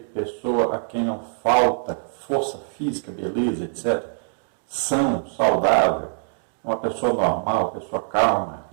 pessoa a quem não falta força física, beleza, etc. São, saudável. Uma pessoa normal, pessoa calma,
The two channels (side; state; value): left; silent; digital silence